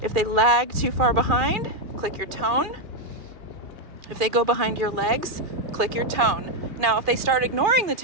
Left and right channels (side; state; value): left; late; 2.4 ms